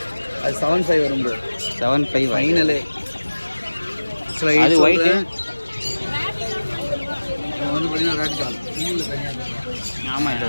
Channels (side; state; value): both; inverted; correlation -1.00